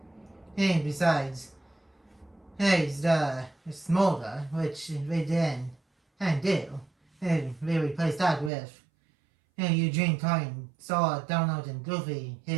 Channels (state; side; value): drops out; left; at 8.5 s